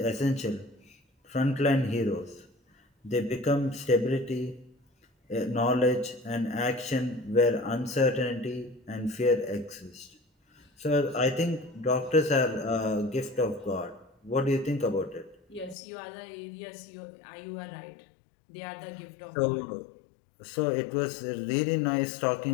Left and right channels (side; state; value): right; drops out; at 15.8 s